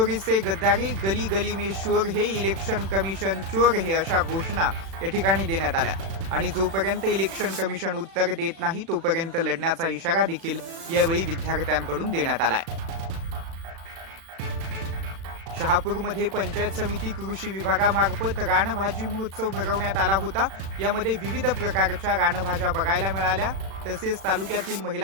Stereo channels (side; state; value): left; late; 36 ms